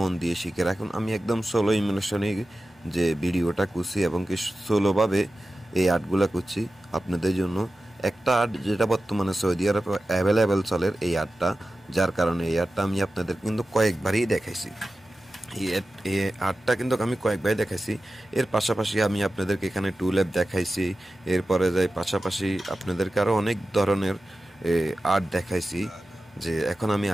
দিয়ে শিখে রাখুন। আমি একদম সোলো ইমোশনে যে ভিডিওটা করছি এবং কি সোলোভাবে এই আর্টগুলা করছি আপনাদের জন্য। একটা আর্ট যেটা বর্তমানে সৌদি আরব অ্যাভেলেবেল চলে, এই আর্টটা, যার কারণে এই আর্টটা আমি আপনাদের কিন্তু কয়েকবারই দেখাইছি। এই আর্টটা কিন্তু আমি কয়েকবারই দেখাইছি। এর পাশাপাশি আমি আপনাদেরকে এখানে টু ল্যাব দেখাইছি, এরপরে যাই পাশাপাশি আপনাদেরকে আরও অনেক ধরনের আর্ট দেখাইছি। যে এখন আমি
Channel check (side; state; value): both; normal; correlation 0.94